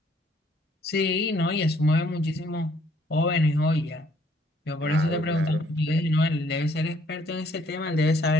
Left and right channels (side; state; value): both; normal; correlation 0.64